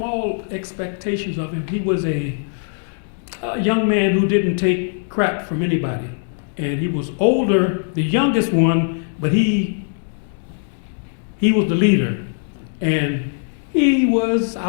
all expectations of him, he was a young man who didn't take crap from anybody. And he was older, the youngest one, but he was the leader. And he was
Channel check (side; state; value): right; silent; 65 dB below the other